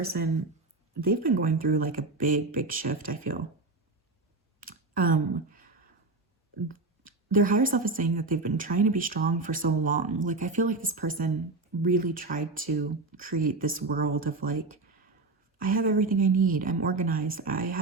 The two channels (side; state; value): left; quieter; 3.5 dB